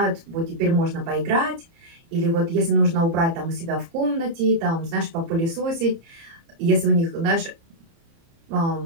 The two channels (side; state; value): left; late; 30 ms